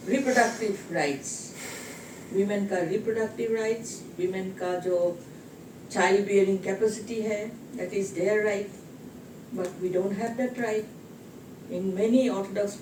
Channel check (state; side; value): identical; both; correlation 1.00